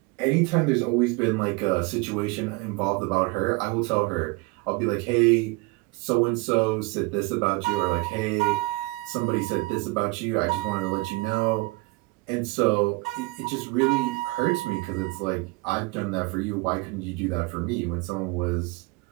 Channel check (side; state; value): left; quieter; 24.4 dB